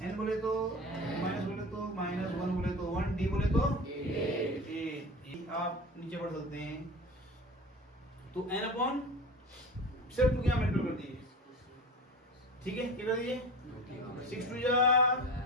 n बोले तो माइनस बोले तो माइनस, 1 बोले तो 1, d बोले तो 8. आप नीचे पढ़ सकते हैं. तो n अपॉन सिर्फ 2 क्या मल्टीप्लाई कर दीजिए, ठीक है, क्या कर दीजिए, 6 2 जा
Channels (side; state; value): both; normal; correlation 0.32